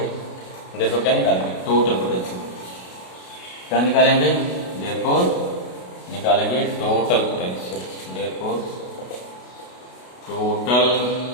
देखो क्या निकालेंगे, टोटल पोटेंशियल क्या निकालेंगे, देयरफॉर निकालेंगे total potential, therefore total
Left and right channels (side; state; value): right; late; 33 ms